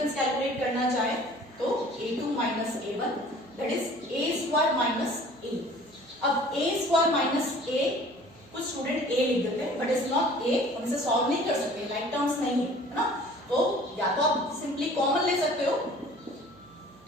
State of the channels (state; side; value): noise; right; hum, 27 dB below the sound